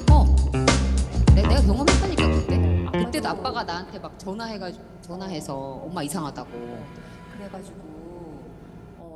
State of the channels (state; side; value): identical; both; correlation 1.00